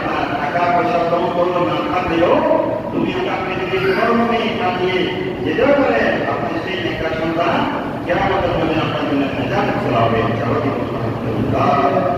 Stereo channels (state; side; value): identical; both; correlation 1.00